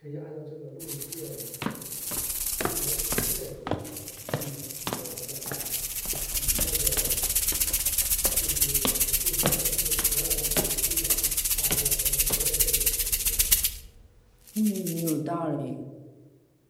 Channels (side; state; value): both; identical; correlation 1.00